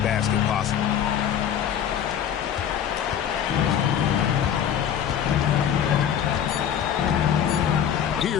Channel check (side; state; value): right; quieter; 9.1 dB